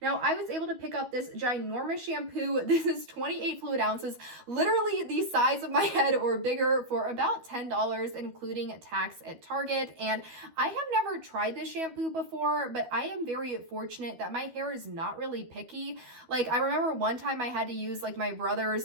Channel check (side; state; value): left; late; 12 ms